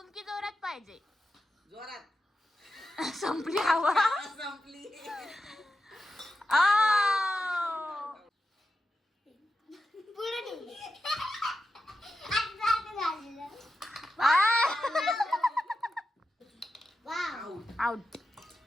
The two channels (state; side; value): normal; both; correlation 0.90